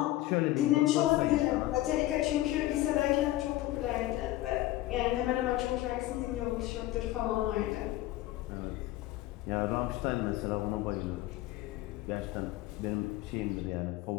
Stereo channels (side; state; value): right; quieter; 16.3 dB